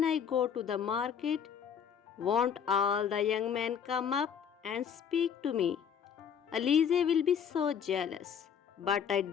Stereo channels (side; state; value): right; quieter; 7.7 dB